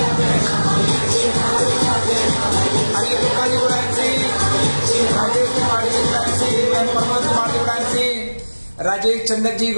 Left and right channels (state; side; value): inverted; both; correlation -1.00